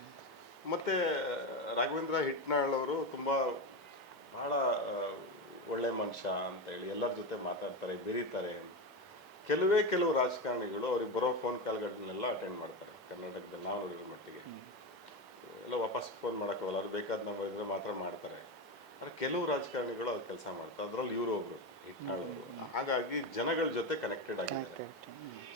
ಮತ್ತು ರಾಘವೇಂದ್ರ ಹಿಟ್ನಾಳ್ ಅವರು ತುಂಬ ಭಾಳ ಒಳ್ಳೆ ಮನುಷ್ಯ ಅಂತೇಳಿ ಎಲ್ಲರ ಜೊತೆ ಮಾತಾಡ್ತಾರೆ, ಬೆರೀತಾರೆ. ಕೆಲವು ರಾಜಕಾರಣಿಗಳು ಅವ್ರಿಗೆ ಬರೋ ಫೋನ್ ಕಾಲ್ಗಳನ್ನೆಲ್ಲ ಅಟೆಂಡ್ ಮಾಡ್ತಾರೆ. ಕರ್ನಾಟಕದಲ್ಲಿ ನಾವು ನೋಡಿರೋ ಮಟ್ಟಿಗೆ ಎಲ್ಲ ವಾಪಸ್ ಫೋನ್ ಮಾಡೋಕ್ಕೋಗಲ್ಲ, ಅವ್ರು ಬೇಕಾದ ನಂಬರ್ ಇದ್ದರೆ ಮಾತ್ರ ಮಾಡ್ತಾರೆ. ಆದರೆ ಕೆಲವು ರಾಜಕಾರಣಿಗಳು ಅದು ಕೆಲಸ ಮಾಡ್ತಾರೆ. ಅದರಲ್ಲಿ ಇವರು ಒಬ್ಬರು ಹಿಟ್ನಾಳ್ ಅವರು. ಹಾಗಾಗಿ ಜನಗಳ ಜೊತೆ ಕನೆಕ್ಟೆಡ್ ಆಗಿದ್ದಾರೆ.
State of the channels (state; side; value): normal; both; correlation 0.16